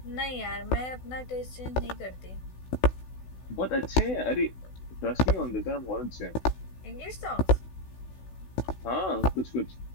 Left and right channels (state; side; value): late; right; 16 ms